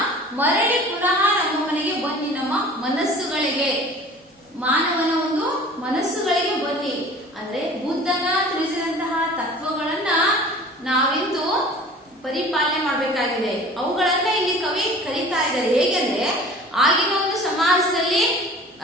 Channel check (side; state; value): both; normal; correlation 0.44